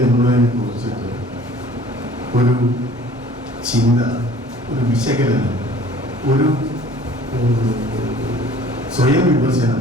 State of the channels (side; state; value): both; normal; correlation 0.50